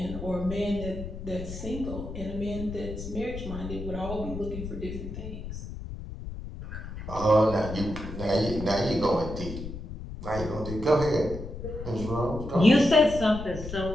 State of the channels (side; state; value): left; noise; rumble, 9 dB below the sound